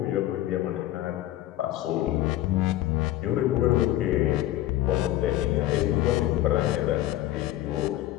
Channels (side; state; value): right; quieter; 14.5 dB